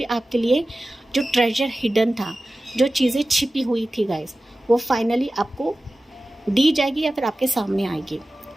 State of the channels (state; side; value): normal; both; correlation 0.95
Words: आपके लिए जो ट्रेजर हिडन था, जो चीज़ें छिपी हुई थी गाइस, वो फाइनली आपको दी जाएगी या फिर आपके सामने आएगी।